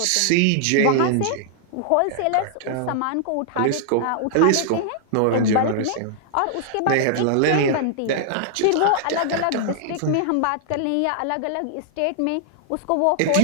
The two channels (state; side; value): different; both; correlation -0.01